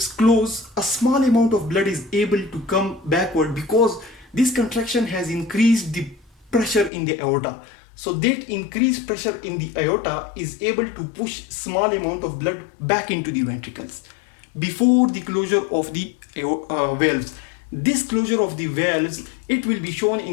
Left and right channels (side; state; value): right; drops out; at 6.9 s